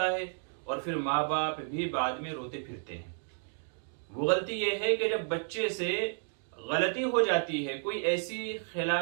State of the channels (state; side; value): silent; left; 56 dB below the other